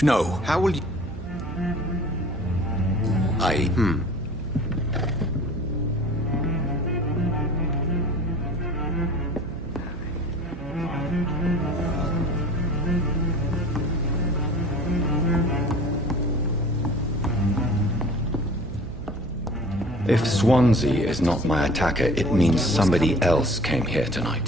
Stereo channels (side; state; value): right; noise; hum, 12 dB below the sound